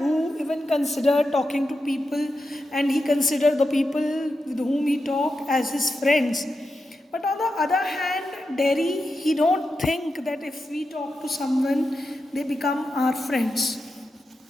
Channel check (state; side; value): normal; both; correlation 0.89